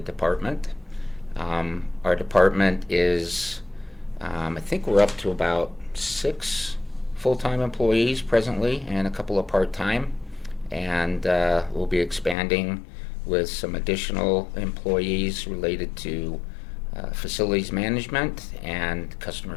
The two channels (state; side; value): drops out; right; at 12.4 s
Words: Our department is, I think we're up to about 6 full-time employees presently and a couple of part-time, and we'll be expanding with some additional employees related to facilities management and customer